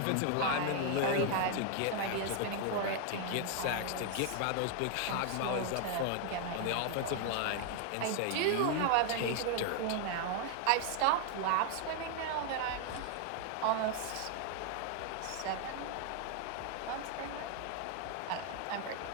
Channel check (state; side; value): different; both; correlation 0.00